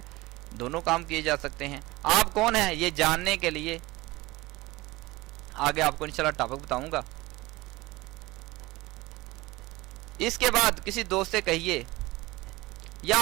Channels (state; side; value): quieter; left; 20.5 dB